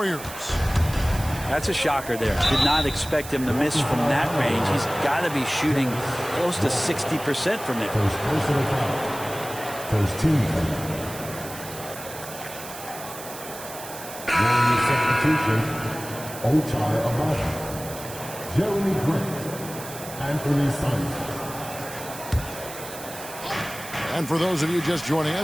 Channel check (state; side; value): noise; right; hiss, 13 dB below the sound